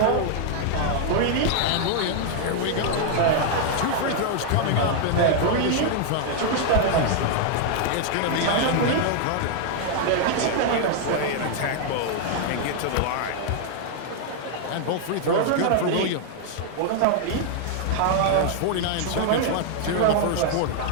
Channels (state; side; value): different; both; correlation 0.00